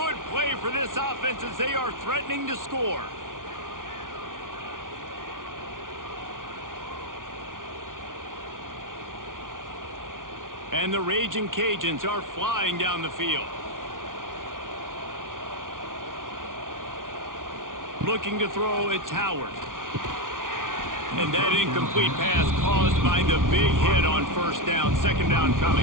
play for this offense as they are threatening to score. And the Raging Cajuns are flying down the field. Looking to throw, it's Howard. And that incomplete pass caused by the big hit on first down. 2nd down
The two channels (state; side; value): late; left; 0.88 ms